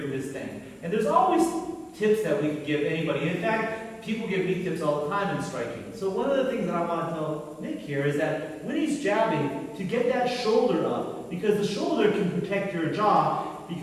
his thing, and there's always tips that we can give anybody. In fact, people give me tips all the time in striking. So one of the things that I want to tell Nick here is that when he's jabbing, to get that shoulder up, because the shoulder can protect your jaw,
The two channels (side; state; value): both; identical; correlation 1.00